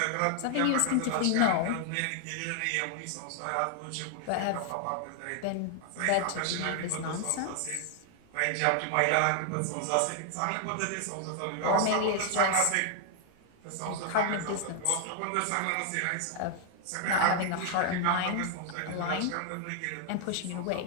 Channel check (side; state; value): both; different; correlation 0.00